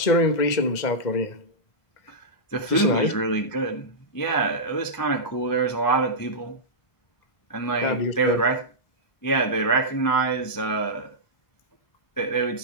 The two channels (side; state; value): right; late; 2.0 ms